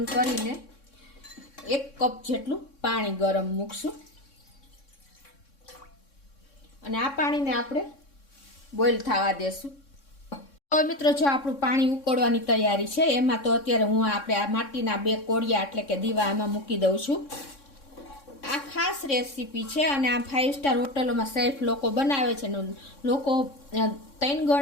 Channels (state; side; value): late; right; 3.6 ms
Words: કરીને 1 કપ જેટલું પાણી ગરમ મૂકશું અને આ પાણીને આપણે બોઇલ થવા દેશું। તો મિત્રો, જો આપણું પાણી ઉકળવાની તૈયારી છે, એમાં તો અત્યારે હું આપણે આ માટીના 2 કોળિયા એટલે કે દીવા એમાં મૂકી દઉં છું। આ ખાસ રેસીપી છે અને આ 5 સ્ટાર હોટલોમાં સેફ લોકો બનાવે છે ને લોકો 3